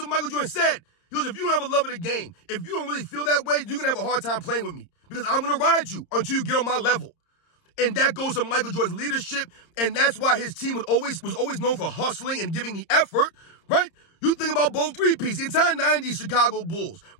Michael Jordan said. He goes, if you don't have a love of the game, if you don't really feel that way, you're going to have a hard time playing with me. Because I'm going to ride you until you get on my level. And that goes to Michael Jordan's leadership. And that's why his team was always known for hustling and giving the effort, right? You think about both three-piece, the entire 90s Chicago Bulls,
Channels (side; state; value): right; late; 30 ms